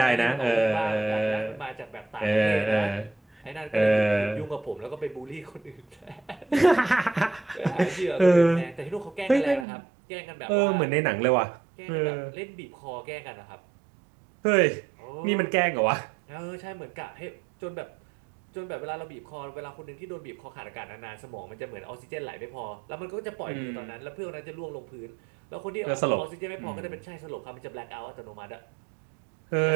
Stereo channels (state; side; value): drops out; left; at 9.7 s